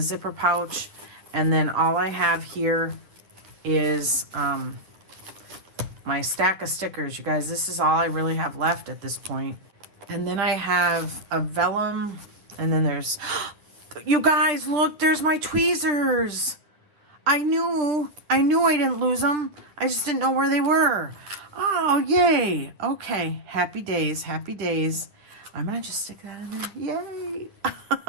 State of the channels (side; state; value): left; late; 10 ms